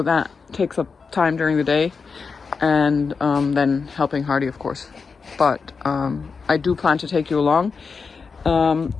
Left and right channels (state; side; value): quieter; right; 5.1 dB